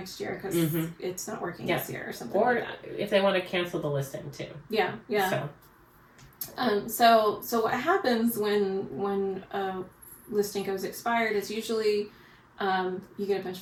year because it's not working this year or something like that. Or if they want to cancel the listing too. Yeah. So what happens when a listing goes expired is usually you get a bunch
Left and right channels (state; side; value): identical; both; correlation 1.00